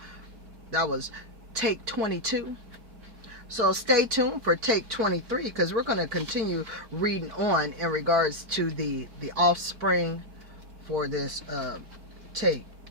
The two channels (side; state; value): left; late; 4.5 ms